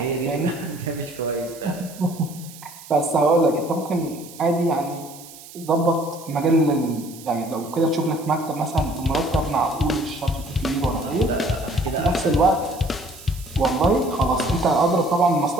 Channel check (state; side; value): noise; right; hiss, 18 dB below the sound